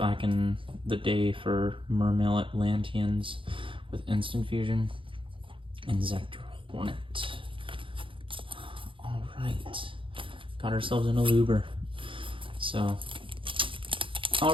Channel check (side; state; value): left; late; 0.25 ms